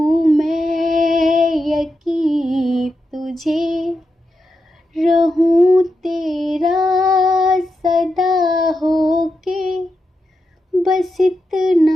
मैं यकीन तुझे, रहूं तेरा सदा होके, बस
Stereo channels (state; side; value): normal; both; correlation 0.87